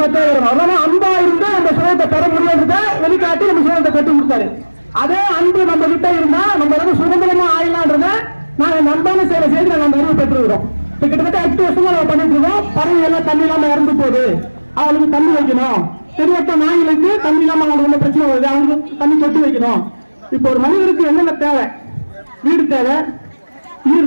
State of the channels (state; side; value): inverted; both; correlation -1.00